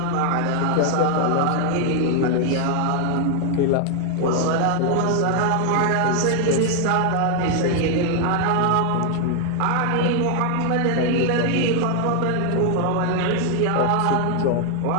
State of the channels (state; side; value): different; both; correlation 0.00